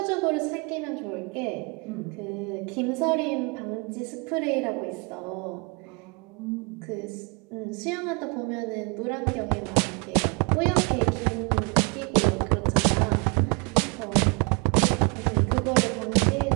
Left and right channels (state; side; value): quieter; left; 32.1 dB